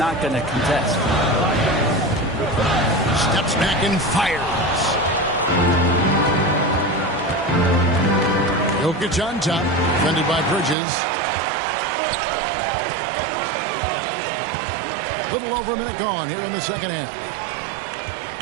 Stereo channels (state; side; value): drops out; left; at 10.8 s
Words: going to contest. Steps back and fires. Jokic on top, defended by Bridges. Little over a minute gone here in the second half.